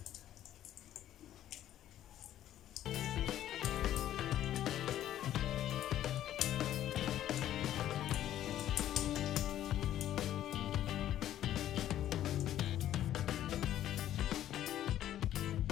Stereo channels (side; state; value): right; quieter; 12.1 dB